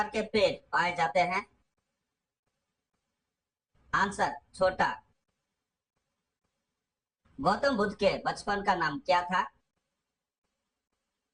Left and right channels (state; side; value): identical; both; correlation 1.00